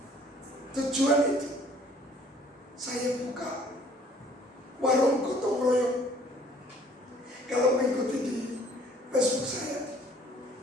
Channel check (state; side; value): normal; both; correlation 0.57